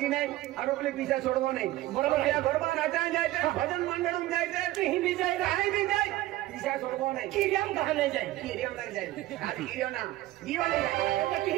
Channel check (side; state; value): left; quieter; 16.6 dB